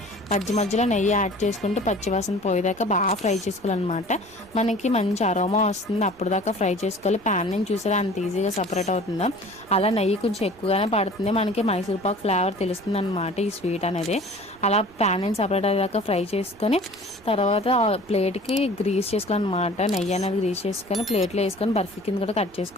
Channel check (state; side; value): noise; right; rumble, 26 dB below the sound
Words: మధ్యలో నెయ్యి యాడ్ చేసుకుంటూ పచ్చివాసన పోయేదాకా బాగా ఫ్రై చేసుకోవాలన్నమాట. మనకి మంచి అరోమా వస్తుంది, అప్పుడు దాకా ఫ్రై చేసుకోవాలి. ప్యాన్ నుంచి చూసారా అంత ఈజీగా సపరేట్ అవుతుందో, అలా నెయ్యి కొంచెం ఎక్కువగానే పడుతుంది, మనకి మైసూర్ పాక్ ఫ్లేవర్ తెలుస్తుంది అనమాట ఈ స్వీట్ అనేది. అలా ప్యాన్ నుంచి సపరేట్ అయ్యేదాకా ఫ్రై చేసుకొని తర్వాత ప్లేట్కి గ్రీస్ చేసుకోవాలన్నమాట. నెయ్యి అనేది గ్రీస్ చేసుకొని ప్లేట్లో వేసుకొని బర్ఫీ కింద కూడా కట్